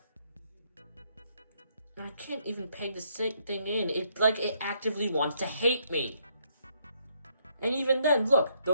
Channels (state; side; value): inverted; both; correlation -0.72